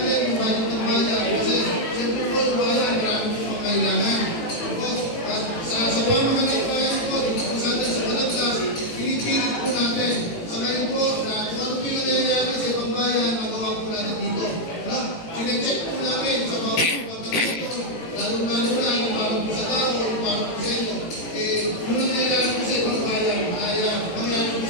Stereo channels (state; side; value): late; right; 18 ms